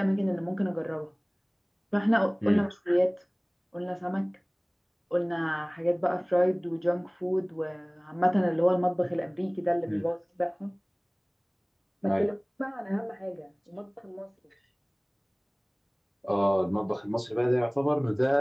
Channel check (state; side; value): identical; both; correlation 1.00